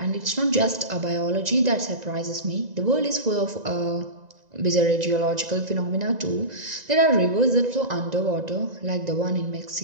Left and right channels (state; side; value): late; left; 2.0 ms